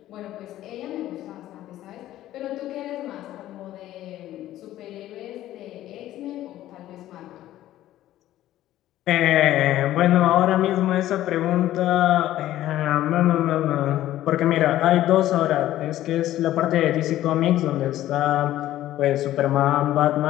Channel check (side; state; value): right; quieter; 13.8 dB